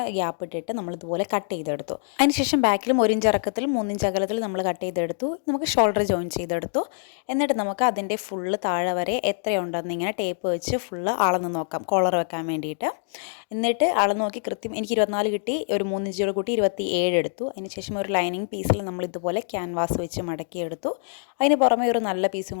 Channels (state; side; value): silent; right; digital silence